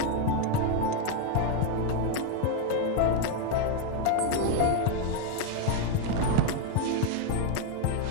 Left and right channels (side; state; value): both; different; correlation 0.01